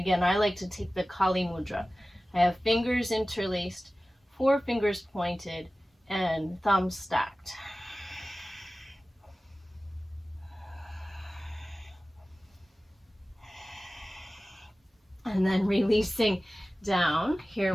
I like to take the Kali Mudra. I have fingers interlaced, 4 fingers pointed, and thumbs stacked. And then releasing down, here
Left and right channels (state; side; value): normal; both; correlation 0.96